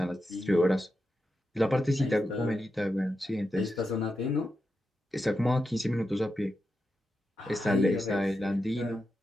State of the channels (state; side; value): normal; both; correlation 0.88